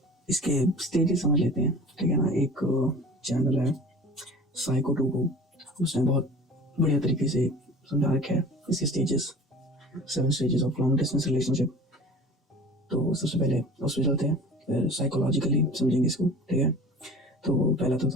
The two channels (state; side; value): normal; both; correlation 0.42